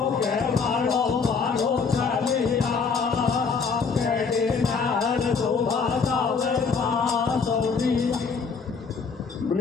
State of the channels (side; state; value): right; quieter; 5.3 dB